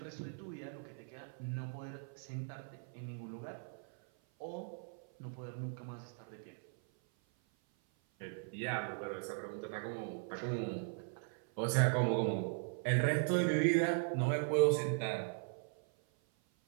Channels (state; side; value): silent; left; 52 dB below the other